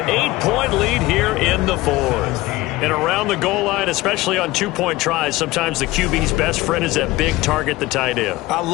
8-point lead here in the 4th. And around the goal line, especially on 2-point tries, sometimes the QB's best friend is that big target, the tight end. I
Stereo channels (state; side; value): quieter; right; 18.9 dB